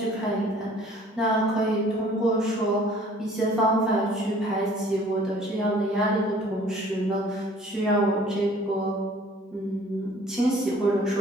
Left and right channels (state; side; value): normal; both; correlation 0.54